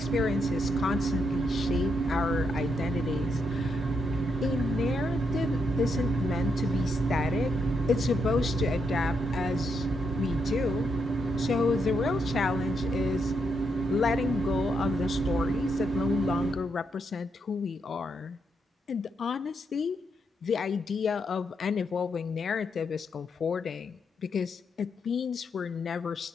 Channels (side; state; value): both; normal; correlation 0.80